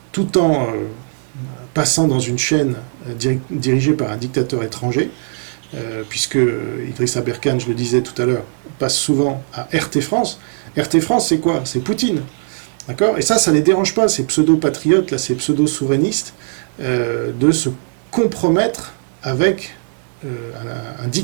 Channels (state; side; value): silent; left; digital silence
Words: tout en passant dans une chaîne dirigée par un dictateur étranger, puisque Idriss Aberkan, je le disais tout à l'heure, passe souvent à RT France. RT France, c'est quoi? C'est Poutine. D'accord? Et ça les dérange pas, ces pseudo-patriotes, là, ces pseudo-souverainistes, de se compromettre avec un